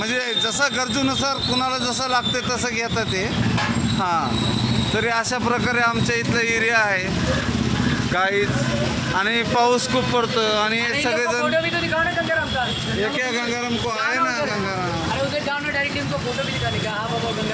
जसं गरजूनुसार कुणाला जसं लागते तसं घेतात ते. हां, तरी अशा प्रकारे आमच्या इथलं एरिया आहे गाईज. आणि पाऊस खूप पडतो आणि सगळेजण एक गंगाराम को आहे ना.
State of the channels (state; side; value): identical; both; correlation 1.00